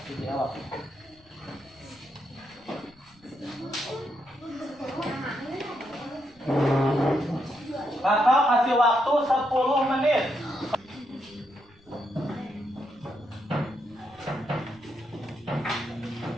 dijawab. Kakak kasih waktu 10 menit.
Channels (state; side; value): noise; left; rumble, 30 dB below the sound